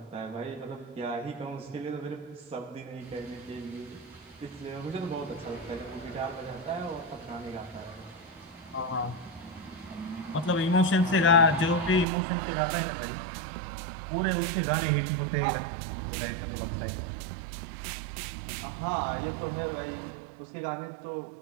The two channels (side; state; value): left; drops out; at 12.1 s